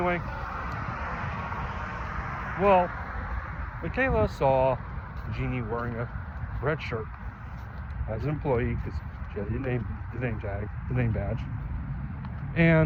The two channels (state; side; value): identical; both; correlation 1.00